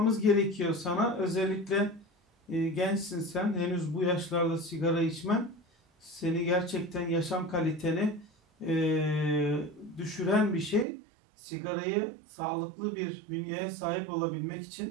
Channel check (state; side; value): drops out; left; at 10.9 s